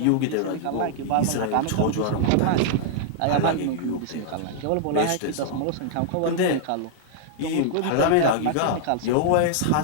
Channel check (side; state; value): both; different; correlation -0.01